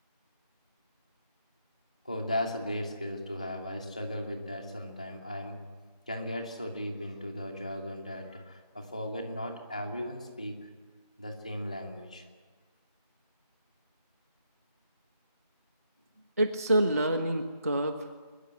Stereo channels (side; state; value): both; inverted; correlation -0.77